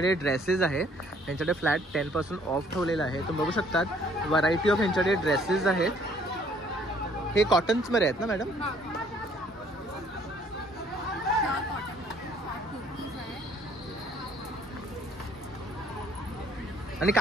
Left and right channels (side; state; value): both; normal; correlation 0.61